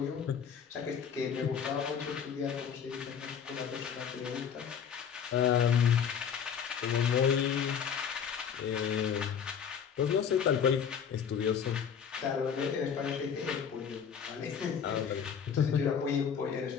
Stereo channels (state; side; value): quieter; right; 7.5 dB